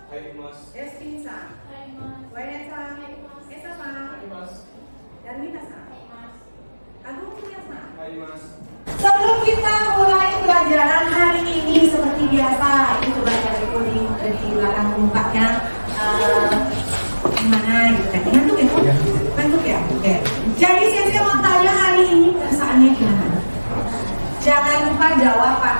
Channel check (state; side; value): inverted; both; correlation -1.00